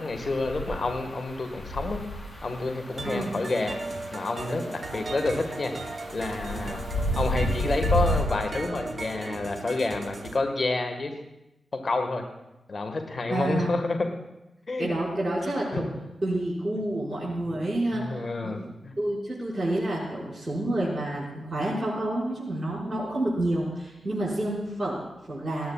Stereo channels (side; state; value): both; normal; correlation 0.86